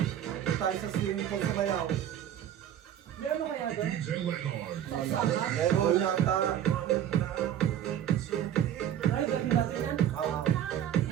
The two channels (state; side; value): quieter; left; 10.6 dB